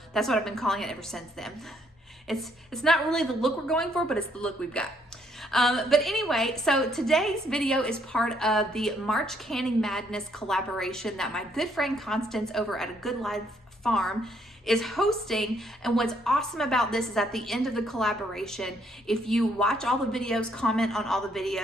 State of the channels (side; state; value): both; normal; correlation 0.70